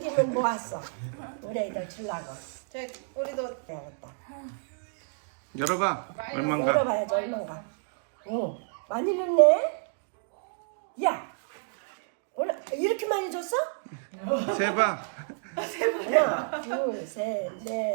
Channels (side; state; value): left; silent; digital silence